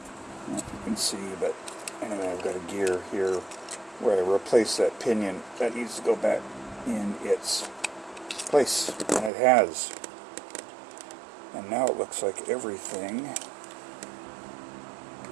You can see, but anyway, I've got a gear here where I replace that pinion. That needs to go back in its place, and it has. And now it looks like everything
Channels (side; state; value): left; drops out; at 9.3 s